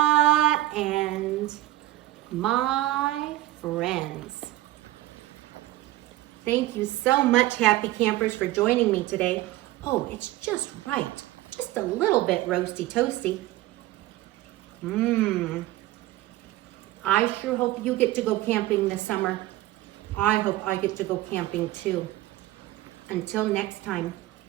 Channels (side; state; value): left; quieter; 15.8 dB